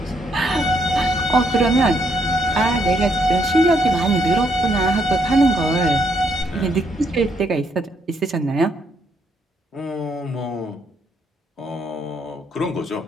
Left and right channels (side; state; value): both; normal; correlation 0.73